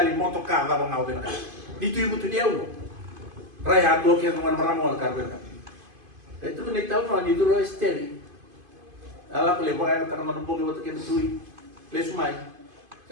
motoka va ngau bina ka. Ditu ibu tu dia ulo. Raya do ke no maramo ka bina ka. Itu ni tau no ni duro esteri. Ala ko le baga ka no bogi woto ke tui. Le sumai.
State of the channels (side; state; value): left; late; 2.5 ms